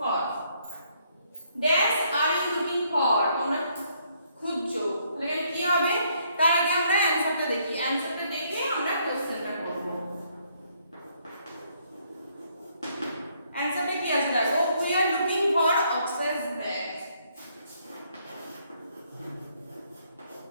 dash are you looking for, তোমরা খুঁজছো। তাহলে কি হবে? তার আগে আমরা অ্যানসারটা দেখি, অ্যানসারটা দেখে আমরা কোশ্চেনটা করব। অ্যানসারটা কি আছে দেখো, we are looking for Akshay's bag.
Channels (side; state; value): both; inverted; correlation -0.70